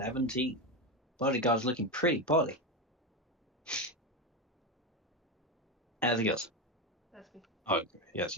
Bodyguard's looking pretty poorly. Anything else? That's me. Oh, yes,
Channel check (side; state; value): both; normal; correlation 0.13